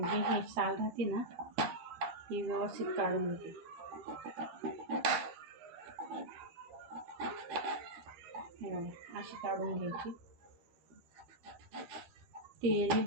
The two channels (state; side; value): late; left; 13 ms